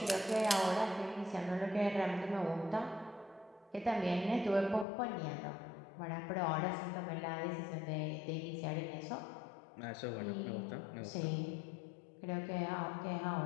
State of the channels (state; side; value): drops out; right; at 4.9 s